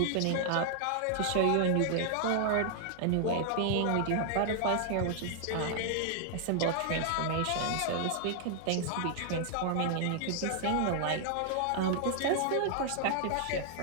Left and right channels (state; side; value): different; both; correlation -0.01